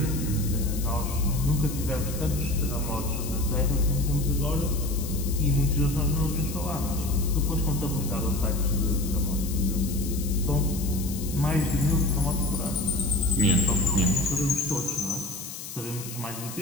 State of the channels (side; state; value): left; noise; hiss, 11 dB below the sound